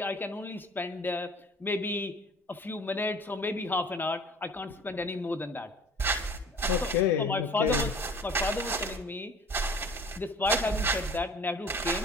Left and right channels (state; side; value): normal; both; correlation 0.46